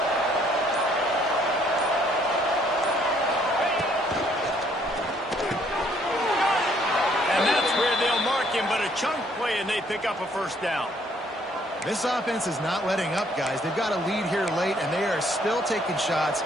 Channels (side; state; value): both; normal; correlation 0.65